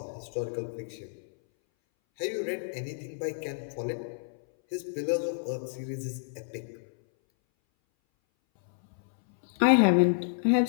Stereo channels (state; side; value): silent; right; 58 dB below the other